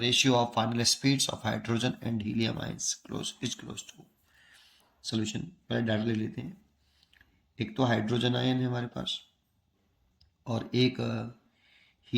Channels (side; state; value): both; identical; correlation 1.00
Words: ratio of final speeds of hydrogen and helium ions is close to। solution पहले data ले लेते हैं। एक तो hydrogen ion है हमारे पास और एक